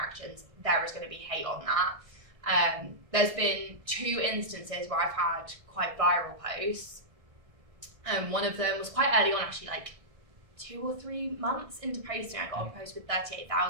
there is going to be hate on that. There's been 2 instances where I've had quite viral posts. One of them was quite early on, actually, like 2 or 3 months into posting. I got a post with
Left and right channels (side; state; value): left; late; 1.6 ms